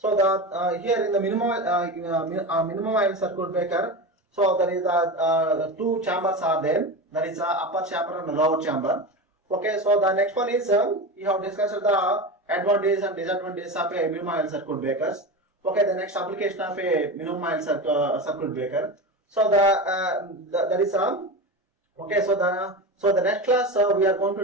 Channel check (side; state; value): both; normal; correlation 0.24